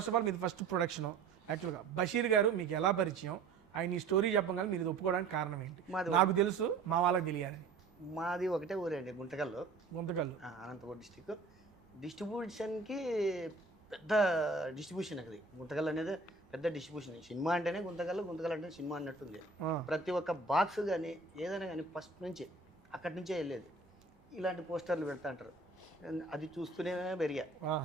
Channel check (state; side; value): quieter; left; 4.3 dB